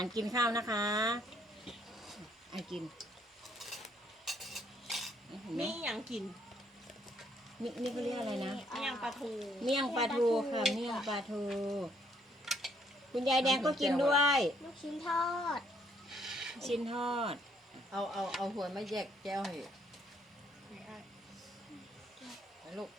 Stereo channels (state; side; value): normal; both; correlation 0.69